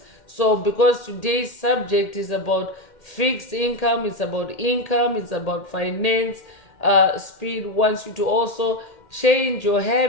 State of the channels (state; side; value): late; right; 1.8 ms